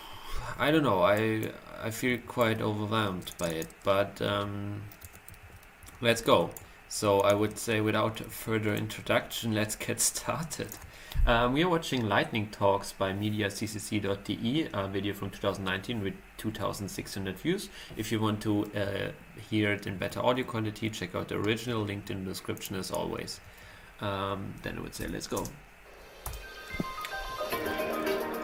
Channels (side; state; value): both; identical; correlation 1.00